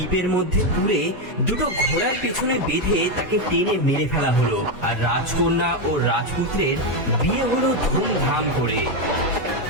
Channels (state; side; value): normal; both; correlation 0.07